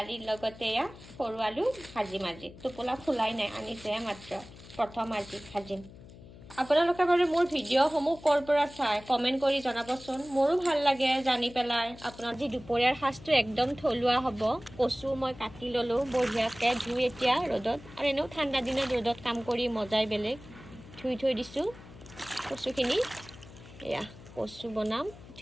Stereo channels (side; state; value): left; noise; hum, 18 dB below the sound